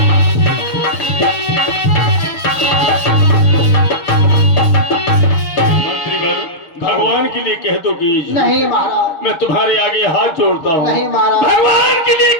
भगवान के लिए कह दो कि नहीं महाराज। मैं तुम्हारे आगे हाथ जोड़ता हूँ। नहीं महाराज। भगवान के लिए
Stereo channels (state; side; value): late; right; 6.8 ms